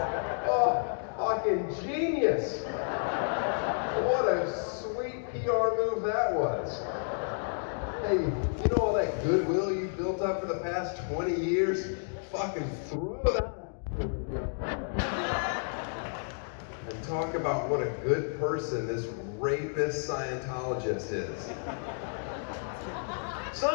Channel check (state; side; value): silent; right; digital silence